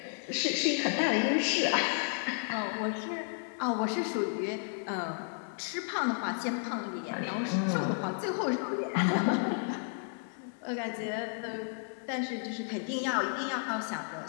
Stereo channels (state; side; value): silent; right; 56 dB below the other